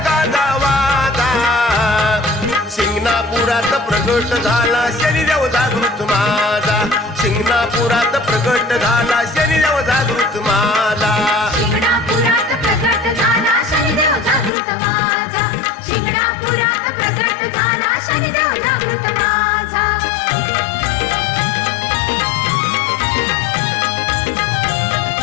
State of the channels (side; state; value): right; drops out; at 14.5 s